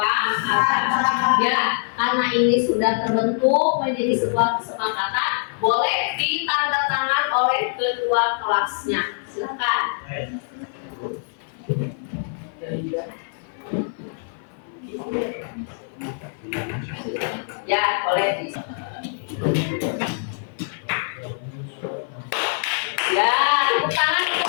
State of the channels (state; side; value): silent; right; 55 dB below the other